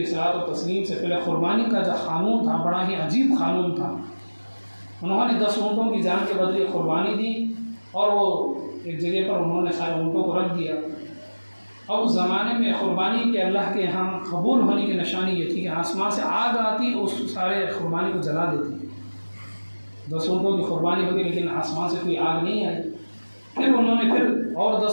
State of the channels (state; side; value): inverted; both; correlation -1.00